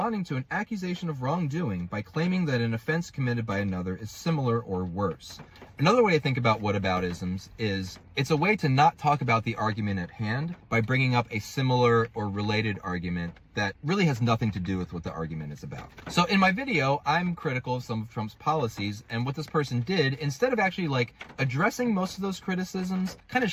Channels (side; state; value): both; identical; correlation 1.00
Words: to an accusation of wrongdoing by claiming that an offense committed by another is similar or worse. Another way to think about whataboutisms is it's a way to not talk about the argument at hand by bringing up a similar or related argument that really has nothing to do with what the argument is about. So in my video, I'm critical of some of Trump's policies, and what this person did, instead of actually like addressing most of those criticisms, kind of